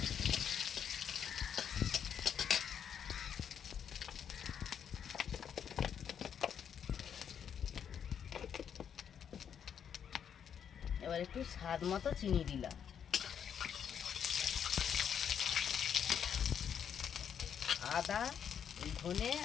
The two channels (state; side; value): quieter; right; 8.2 dB